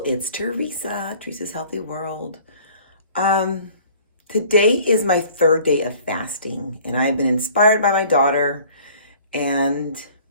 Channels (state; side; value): inverted; both; correlation -0.51